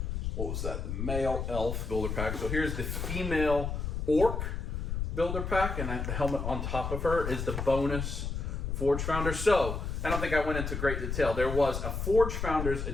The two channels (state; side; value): noise; left; rumble, 3 dB below the sound